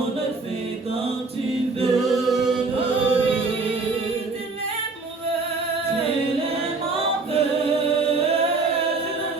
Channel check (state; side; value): quieter; left; 3.8 dB